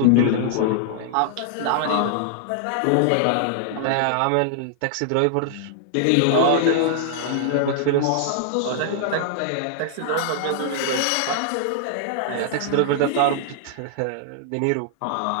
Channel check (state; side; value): different; both; correlation -0.01